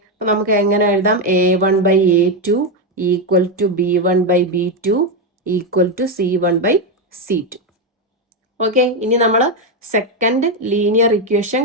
അപ്പൊ നമുക്ക് എങ്ങനെ എഴുതാം? A1/A2 equal to B1/B2 equal to C1/C2. Okay, ഇനി നമ്മൾ സെക്കൻഡ് ലീനിയർ ഇക്വേഷൻ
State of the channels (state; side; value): normal; both; correlation 0.07